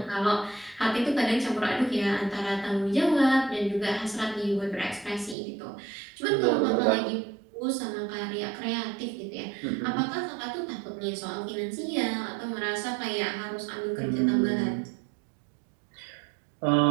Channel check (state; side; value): drops out; left; at 5.4 s